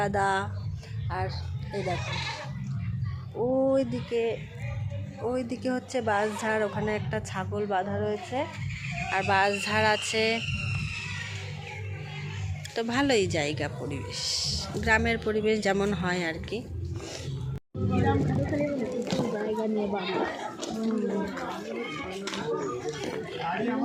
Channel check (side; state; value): both; identical; correlation 1.00